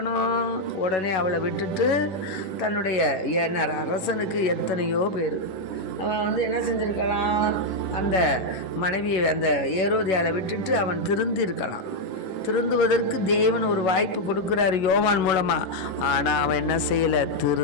உடனே அவளை விட்டுட்டு தன்னுடைய அரசனுக்கு எத்தனையோ பேர் அவன் என்ன செஞ்சிருக்கலாம்? அந்த மனைவியை அந்த ஏரோதியாலை விட்டுட்டு அவன் திருந்திருக்கலாம். திருந்துவதற்கு தேவன் ஒரு வாய்ப்பு கொடுக்குறாரு யோவான் மூலமாக. ஆனால் அவன் என்ன செய்யலை?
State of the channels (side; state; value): right; late; 11 ms